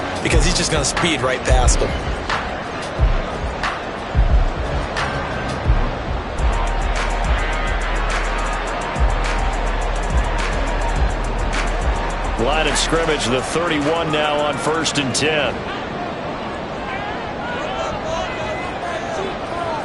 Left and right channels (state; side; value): identical; both; correlation 1.00